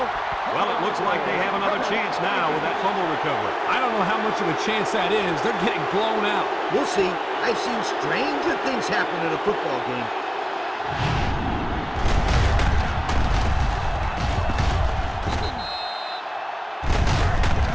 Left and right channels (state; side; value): identical; both; correlation 1.00